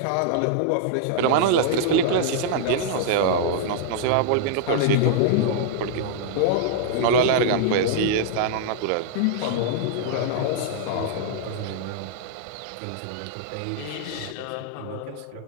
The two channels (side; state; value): both; different; correlation -0.01